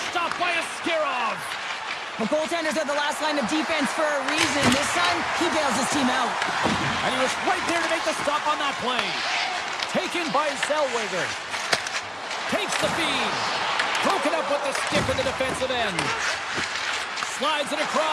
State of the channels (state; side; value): identical; both; correlation 1.00